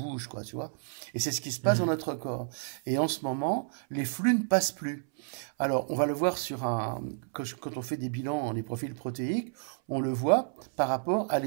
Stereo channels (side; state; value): left; silent; 57 dB below the other